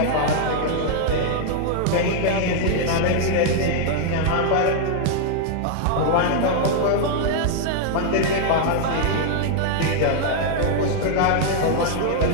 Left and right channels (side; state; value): both; different; correlation 0.00